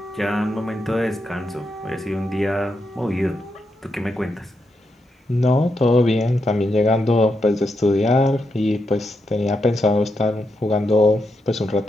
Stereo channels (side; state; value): both; normal; correlation 0.84